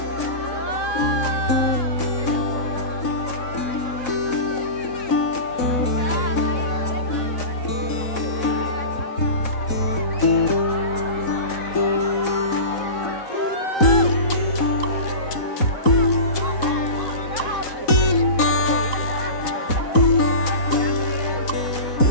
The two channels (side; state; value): right; late; 4.0 ms